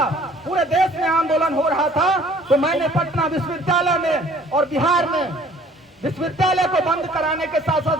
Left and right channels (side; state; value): both; normal; correlation 0.55